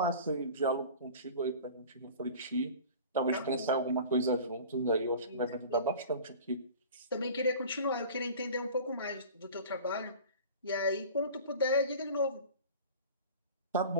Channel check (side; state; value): both; inverted; correlation -0.40